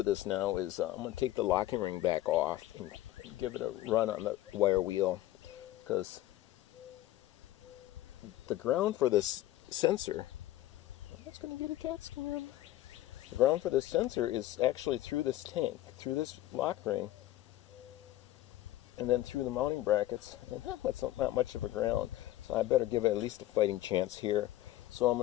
this now is I'm going to take the locking ring back off and give it a run on the wire wheel, because the ground for this sensor, I'm just going to get a CAT scan. The ground for this sensor is actually through this tank, through this lock ring, and then through the mounting brackets, and that's not much of a ground, so I better give it at least a fighting chance here. So I'm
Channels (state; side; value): quieter; right; 14.9 dB